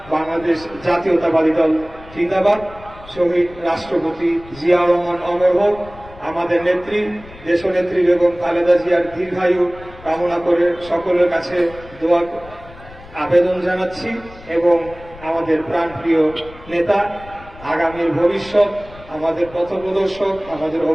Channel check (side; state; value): left; noise; rumble, 19 dB below the sound